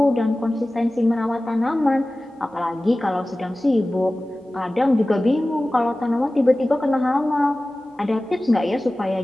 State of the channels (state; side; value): normal; both; correlation 0.97